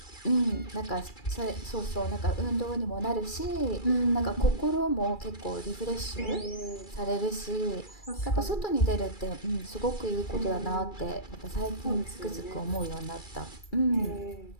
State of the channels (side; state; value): right; late; 2.3 ms